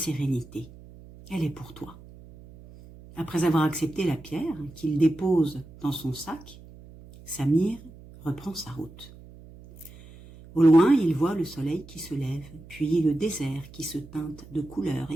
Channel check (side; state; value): right; noise; hum, 19 dB below the sound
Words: Elle est pour toi. » Après avoir accepté la pierre qu'il dépose dans son sac, Samir reprend sa route. Au loin, il voit le soleil qui se lève, puis le désert qui se teinte de couleurs,